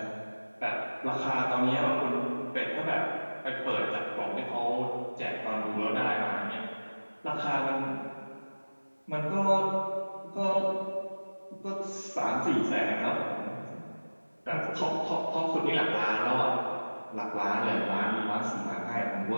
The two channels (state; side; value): inverted; both; correlation -1.00